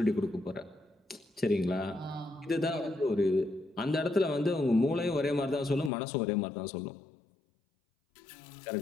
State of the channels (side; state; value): right; drops out; at 5.9 s